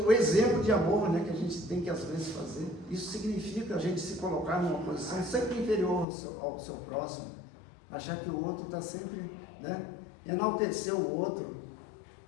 exemplo de amor, né, que a gente tem que às vezes fazer, isso significa a gente se colocar numa posição sempre inferior ao seu próximo, achar que o outro está sempre, né, enaltecer o outro.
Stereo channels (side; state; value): right; drops out; at 6.1 s